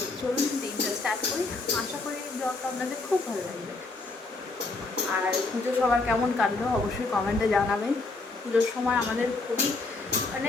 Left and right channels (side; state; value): right; quieter; 3.5 dB